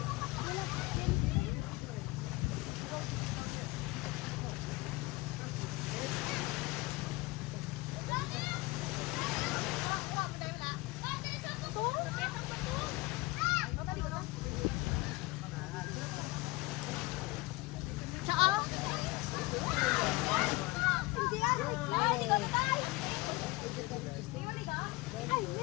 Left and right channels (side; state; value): right; quieter; 22.0 dB